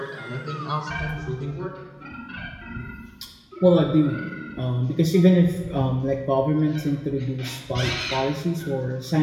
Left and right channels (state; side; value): identical; both; correlation 1.00